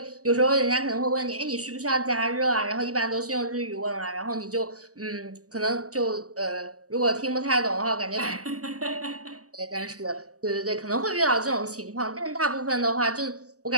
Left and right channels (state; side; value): late; left; 0.66 ms